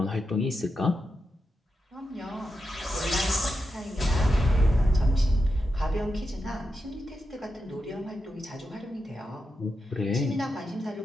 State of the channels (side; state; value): both; normal; correlation 0.88